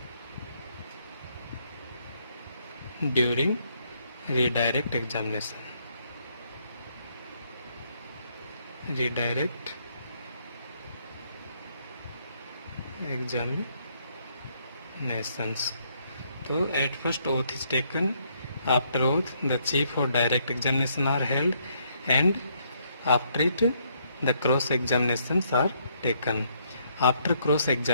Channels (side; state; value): both; inverted; correlation -0.71